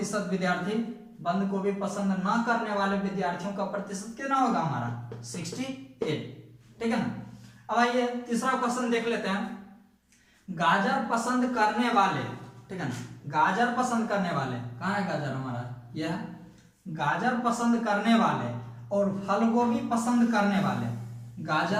विद्यार्थी बंद गोभी पसंद ना करने वाले विद्यार्थियों का प्रतिशत कितना होगा हमारा? 68, ठीक है ना। अब आइए तीसरा क्वेश्चन देख लेते हैं, गाजर पसंद करने वाले, ठीक है ना। गाजर पसंद करने वाले, कहाँ है गाजर हमारा? यह है। गाजर पसंद करने वाले और फल गोभी पसंद करने वाले,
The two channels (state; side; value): identical; both; correlation 1.00